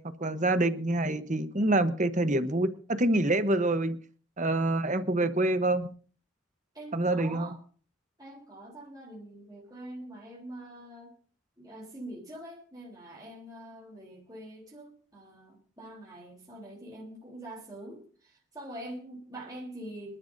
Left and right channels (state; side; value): normal; both; correlation 0.51